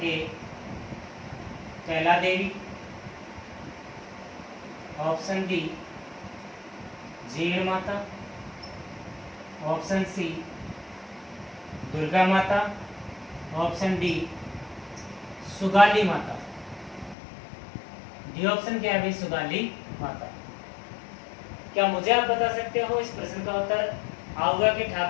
A Kaila Devi, option B Jeen Mata, option C Durga माता, ऑप्शन डी सुगाली माता। डी ऑप्शन क्या है भाई? सुगाली माता। क्या मुझे आप बता सकते हो इस प्रश्न का उत्तर? आहुआ के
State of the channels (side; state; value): right; drops out; at 17.2 s